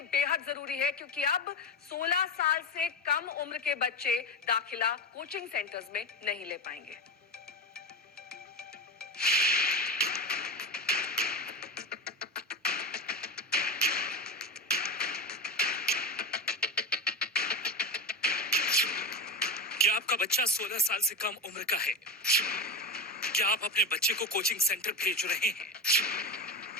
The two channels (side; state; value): both; normal; correlation 0.19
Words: बेहद जरूरी है क्योंकि अब 16 साल से कम उम्र के बच्चे दाखिला कोचिंग सेंटर्स में नहीं ले पाएंगे। क्या आपका बच्चा 16 साल से कम उम्र का है? क्या आप अपने बच्चे को कोचिंग सेंटर भेज रहे हैं?